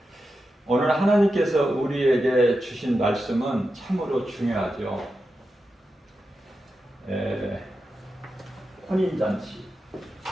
오늘 하나님께서 우리에게 주신 말씀은 참으로 중요하죠. 혼인잔치.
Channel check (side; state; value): both; normal; correlation 0.89